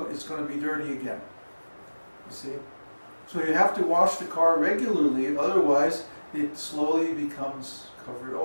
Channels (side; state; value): both; inverted; correlation -1.00